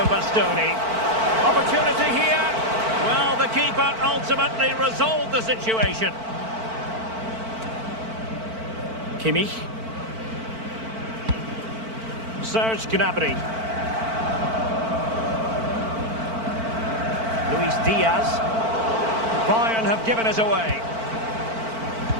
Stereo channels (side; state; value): left; late; 4.5 ms